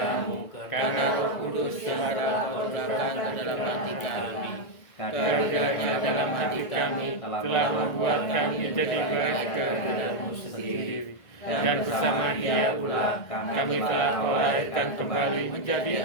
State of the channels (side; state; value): right; late; 1.7 ms